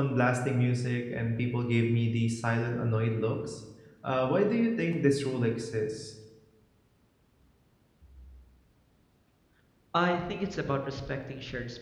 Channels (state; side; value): identical; both; correlation 1.00